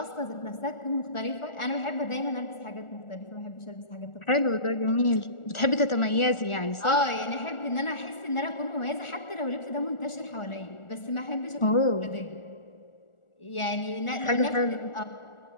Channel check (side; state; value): right; late; 1.4 ms